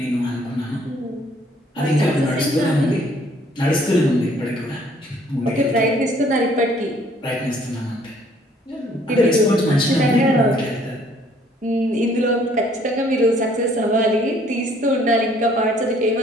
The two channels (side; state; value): both; normal; correlation 0.61